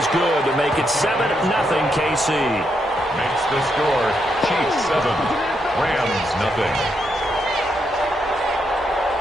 good to make it 7-0 KC. Makes the score Chiefs 7, Rams 0.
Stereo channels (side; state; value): both; normal; correlation 0.80